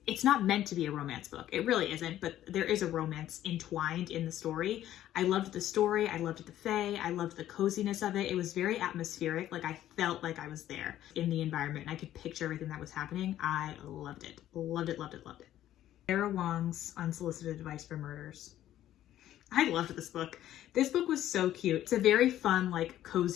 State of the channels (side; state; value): right; quieter; 12.6 dB